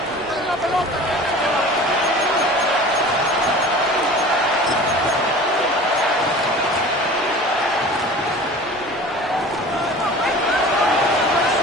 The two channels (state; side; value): normal; both; correlation 0.40